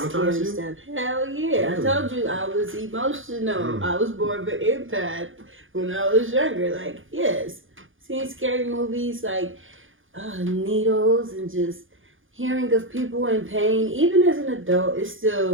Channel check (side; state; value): left; late; 0.58 ms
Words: stuff. Hell yeah. I told you I was emotional. I was more of an empath when I was younger. Like, yes. Seeing scary movies like needles and just hearing of people in pain, even as an adult, it still